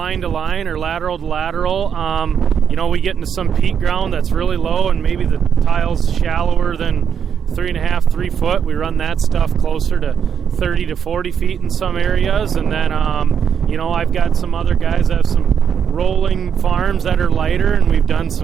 to line or lateral to lateral. We get into some peat ground that's really low and maybe the tile's shallower than 3 foot. We run that stuff closer to 30 to 40 feet in some areas. And then, I've got some other guys that have some rolling farms that are lighter, and we've done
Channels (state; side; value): quieter; left; 7.7 dB